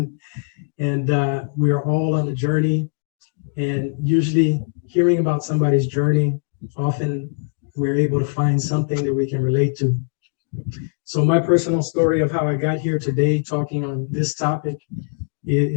we are all on a journey. And usually hearing about somebody's journey, often we're able to find something that we can relate to. So my personal story of how I got here today talking on this topic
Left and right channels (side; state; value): right; silent; digital silence